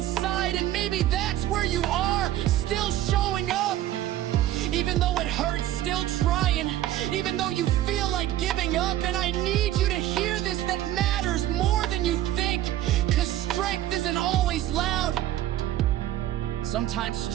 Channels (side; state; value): left; quieter; 13.4 dB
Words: And maybe that's where you are, still showing up. Even though it hurts, still trying. Even though you feel like giving up. And I need you to hear this isn't always loud. Sometimes